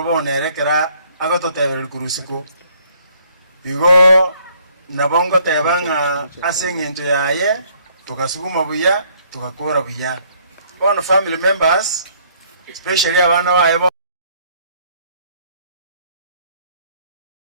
bonerekera agototebereri kurusiko igo nabo ngoteba ng'a ase eng'encho yaye tugasuguma buya tugakora buya bono family members especially abana baye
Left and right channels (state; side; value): inverted; both; correlation -0.63